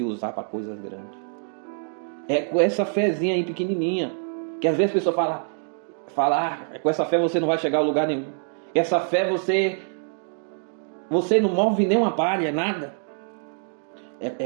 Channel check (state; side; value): silent; left; 62 dB below the other